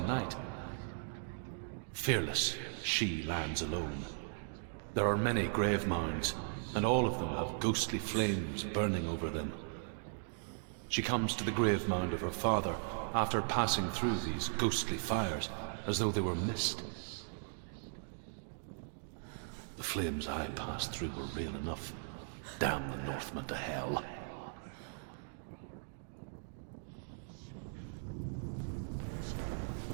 Fearless, she lands alone. There are many grave mounds, and all of them have ghostly flames burning over them. She comes to the grave mound of her father after passing through these ghostly fires as though they were mist. The flames I passed through were real enough. Damn the Northmen to hell.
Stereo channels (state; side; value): silent; left; digital silence